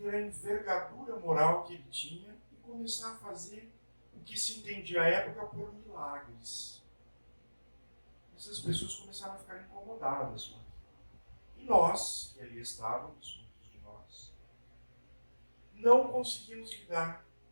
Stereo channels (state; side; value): inverted; both; correlation -1.00